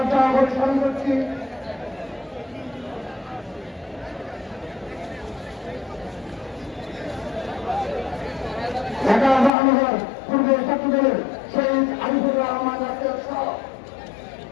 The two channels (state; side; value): drops out; right; at 9.5 s